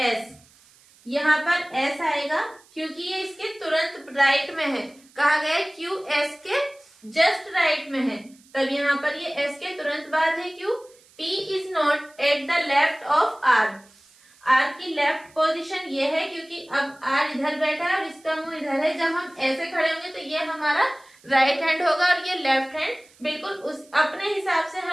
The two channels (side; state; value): right; noise; hiss, 28 dB below the sound